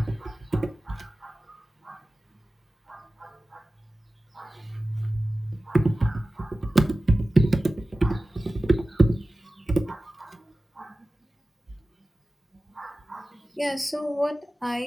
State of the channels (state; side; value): normal; both; correlation 0.96